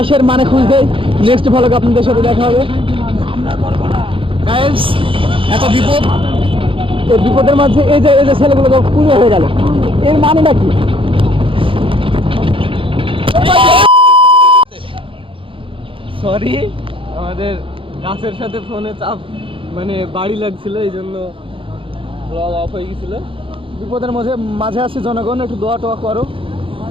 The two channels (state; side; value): late; left; 0.25 ms